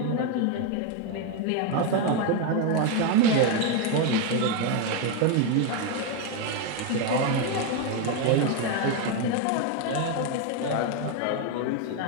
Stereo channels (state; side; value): different; both; correlation 0.02